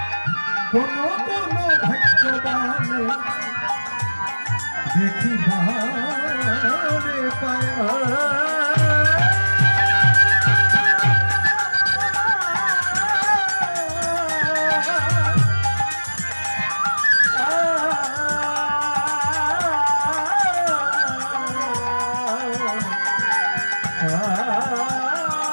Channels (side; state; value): both; inverted; correlation -1.00